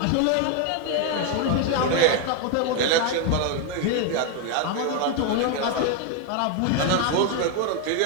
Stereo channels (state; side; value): different; both; correlation 0.01